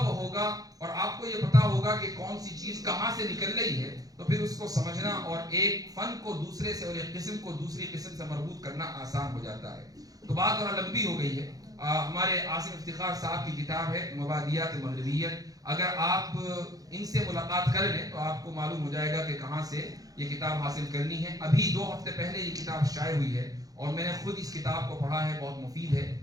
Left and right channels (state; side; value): late; left; 0.18 ms